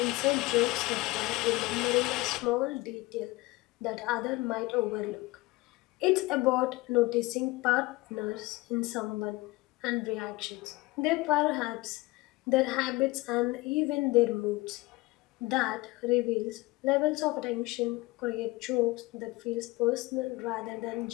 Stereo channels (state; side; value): quieter; right; 21.3 dB